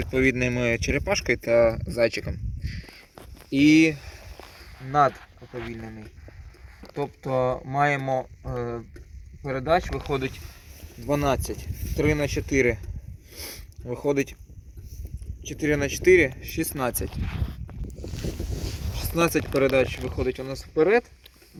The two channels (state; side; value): identical; both; correlation 1.00